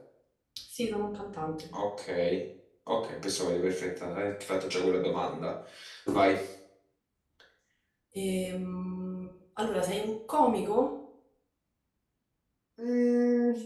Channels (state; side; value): identical; both; correlation 1.00